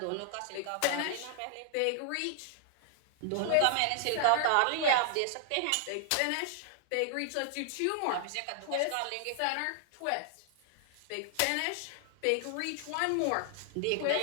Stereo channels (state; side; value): different; both; correlation -0.01